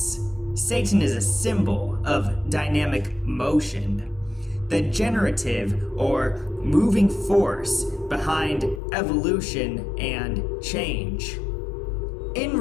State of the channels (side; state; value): right; drops out; at 8.8 s